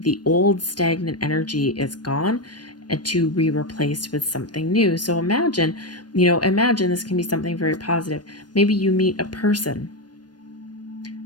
old stagnant energy is gone and to be replaced with something new. So imagine this can be something very positive. Maybe you meet a person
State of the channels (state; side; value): late; right; 0.69 ms